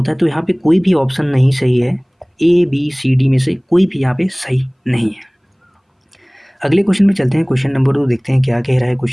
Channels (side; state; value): both; identical; correlation 1.00